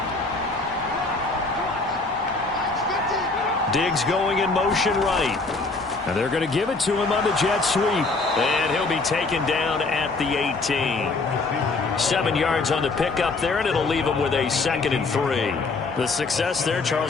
Diggs going in motion right. And they're going to give it to him on the jet sweep. And he'll be taken down at the 18. 7 yards on the pickup there, and it'll leave him with a 2nd and 3. The success there,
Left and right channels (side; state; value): right; quieter; 3.7 dB